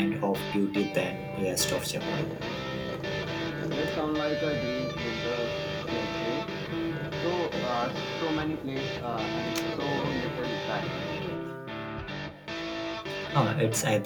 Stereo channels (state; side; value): identical; both; correlation 1.00